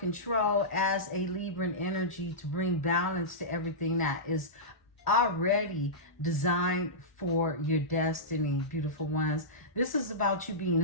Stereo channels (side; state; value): both; normal; correlation -0.16